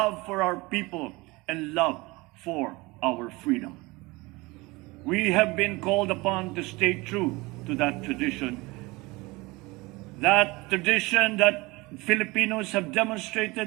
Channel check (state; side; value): quieter; left; 23.1 dB